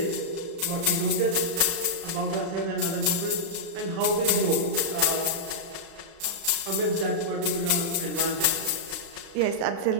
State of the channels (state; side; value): late; left; 36 ms